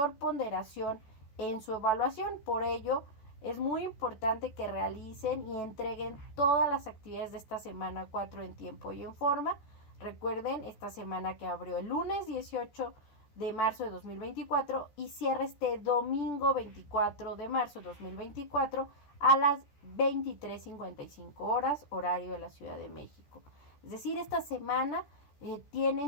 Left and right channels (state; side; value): late; right; 14 ms